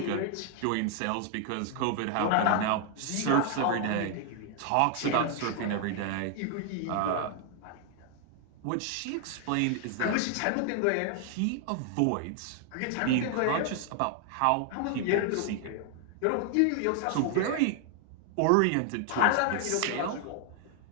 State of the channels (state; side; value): different; both; correlation 0.00